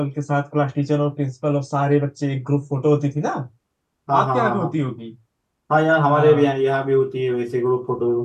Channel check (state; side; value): identical; both; correlation 1.00